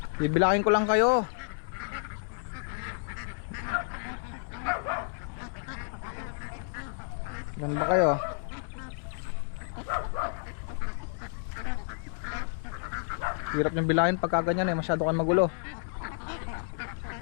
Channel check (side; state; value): right; silent; 57 dB below the other